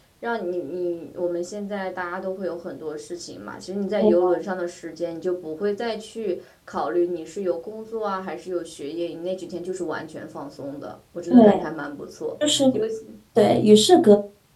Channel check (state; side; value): identical; both; correlation 1.00